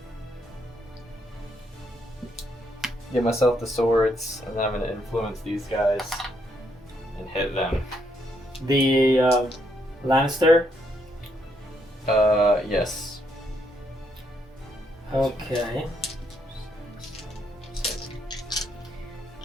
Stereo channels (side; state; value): both; normal; correlation 0.75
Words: get myself the swords, and then I'm gonna influence these guys and hit them. The Lannister. Yes. Okay.